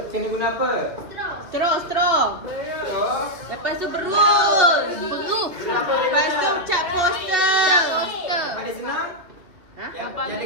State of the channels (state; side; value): late; left; 2.6 ms